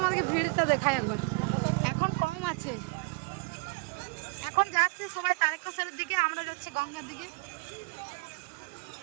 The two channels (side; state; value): left; quieter; 32.3 dB